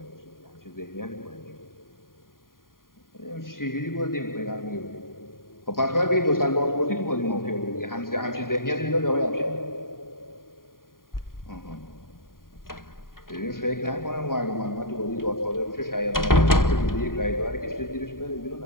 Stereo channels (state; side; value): late; right; 0.91 ms